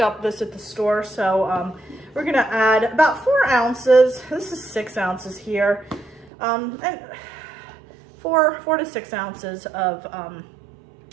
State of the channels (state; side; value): drops out; left; at 6.3 s